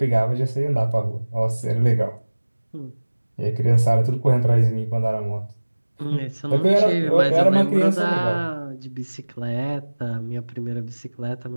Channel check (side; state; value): both; inverted; correlation -1.00